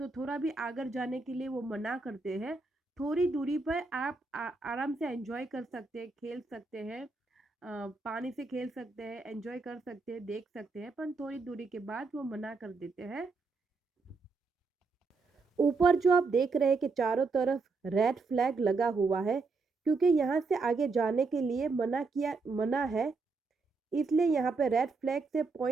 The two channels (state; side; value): quieter; left; 4.1 dB